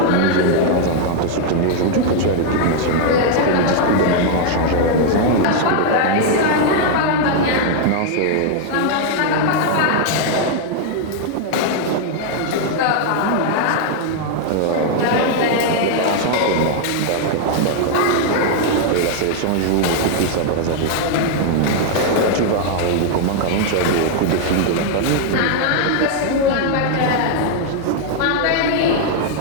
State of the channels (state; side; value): different; both; correlation 0.00